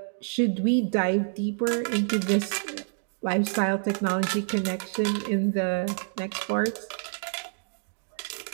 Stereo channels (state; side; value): silent; left; digital silence